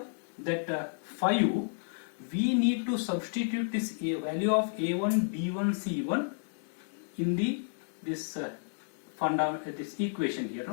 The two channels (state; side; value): silent; right; digital silence